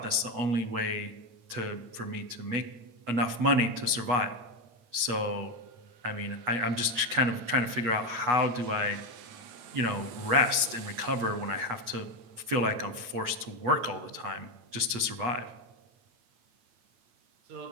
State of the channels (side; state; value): left; late; 8.8 ms